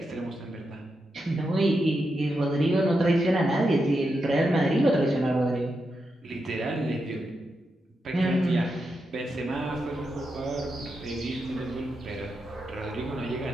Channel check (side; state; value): both; normal; correlation 0.86